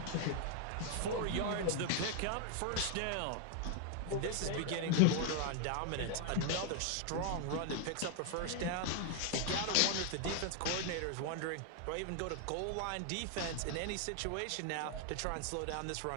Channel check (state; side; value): different; both; correlation 0.00